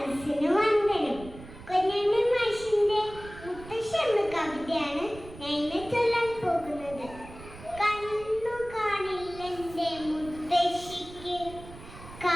വന്ദനം. കുഞ്ഞുണ്ണി മാഷിന്റെ മുത്തശ്ശി എന്ന കവിതയാണ് ഞാൻ ഇന്ന് ചൊല്ലാൻ പോകുന്നത്. കണ്ണു കാണില്ലെന്റെ മുത്തശ്ശിക്ക്,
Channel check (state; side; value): noise; right; rumble, 16 dB below the sound